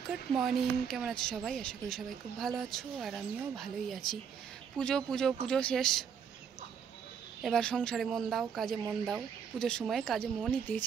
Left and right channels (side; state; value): left; quieter; 7.3 dB